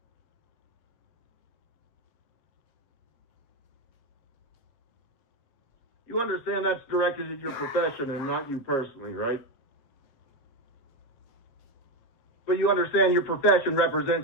You understand that's directed at your profession and not you personally, right? But you understand your profession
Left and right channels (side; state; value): right; late; 8.0 ms